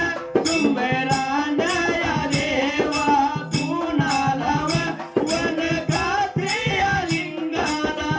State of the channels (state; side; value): identical; both; correlation 1.00